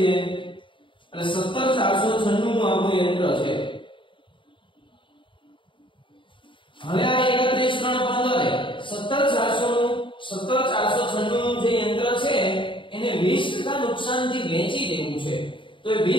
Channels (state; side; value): late; right; 0.24 ms